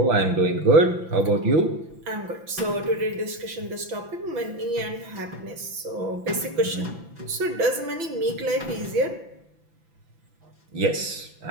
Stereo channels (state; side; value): late; left; 5.9 ms